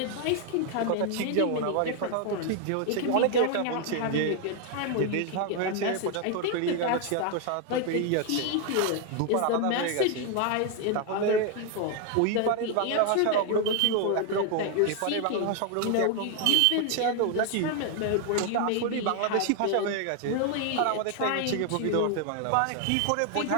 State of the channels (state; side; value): different; both; correlation 0.01